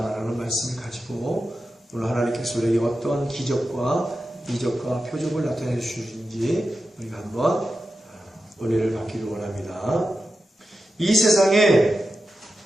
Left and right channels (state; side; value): normal; both; correlation 0.91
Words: 말씀을 가지고 오늘 하나님께서 우리에게 어떤 기적과 이적과 표적을 나타내 주시는지 우리가 한번 은혜를 받기를 원합니다. 이 세상에